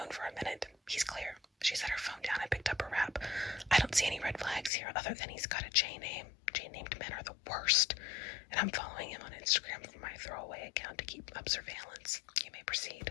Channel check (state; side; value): drops out; right; at 4.7 s